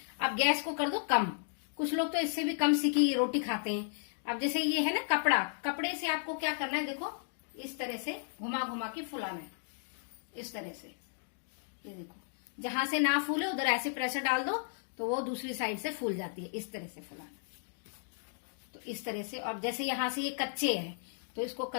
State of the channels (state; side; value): silent; right; digital silence